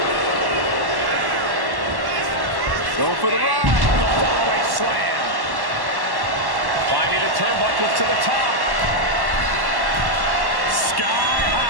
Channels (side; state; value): left; late; 1.1 ms